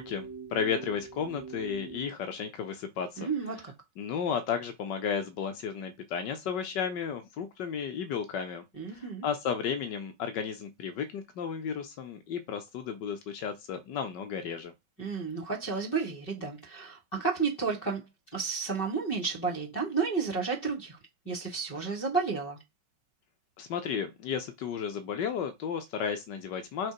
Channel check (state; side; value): late; right; 5.3 ms